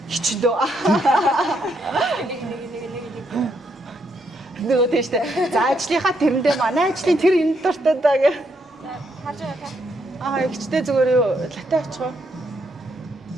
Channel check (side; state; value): both; normal; correlation 0.76